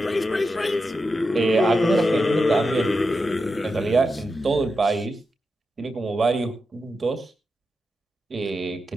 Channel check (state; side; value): normal; both; correlation 0.88